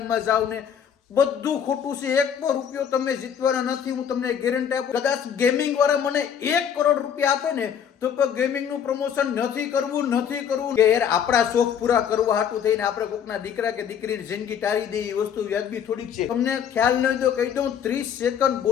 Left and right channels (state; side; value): quieter; right; 8.3 dB